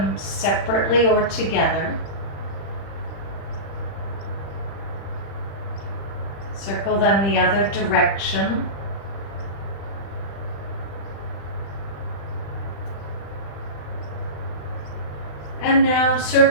separately or together. Circle them the other direction. And now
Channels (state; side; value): late; right; 35 ms